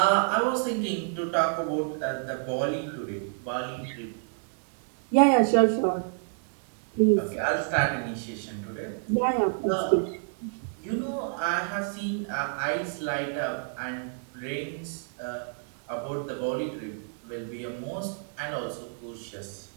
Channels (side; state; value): left; silent; digital silence